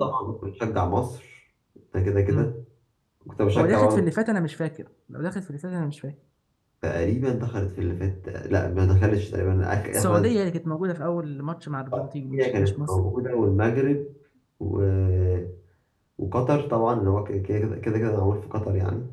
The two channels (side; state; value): both; identical; correlation 1.00